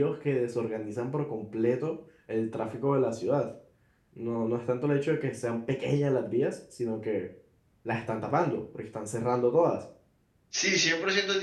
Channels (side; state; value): both; identical; correlation 1.00